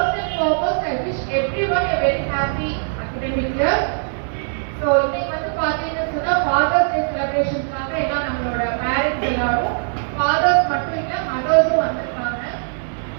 and foremost I wish everyone a very happy academic year. So இன்னைக்கு வந்து பாத்தீங்கன்னா சொன்னா Father's Day celebrationக்காக எல்லாம் நம்மளோட பேரண்ட்ஸ் எல்லாரும் ஃபாதர்ஸ் மட்டும் இல்ல மதர்ஸும் வந்திருக்காங்க.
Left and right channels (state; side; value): silent; left; digital silence